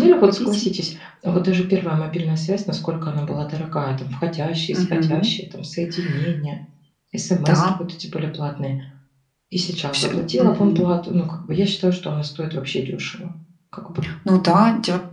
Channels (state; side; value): identical; both; correlation 1.00